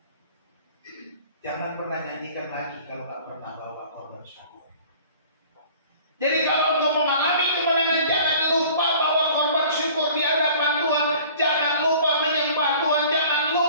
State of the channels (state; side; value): inverted; both; correlation -0.48